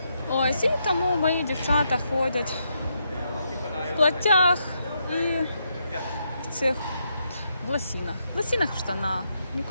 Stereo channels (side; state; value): both; inverted; correlation -0.80